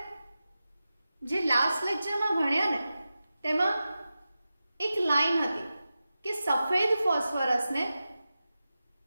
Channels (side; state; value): both; inverted; correlation -0.93